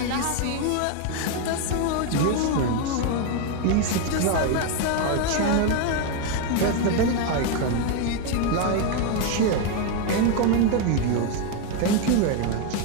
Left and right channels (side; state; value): both; different; correlation 0.01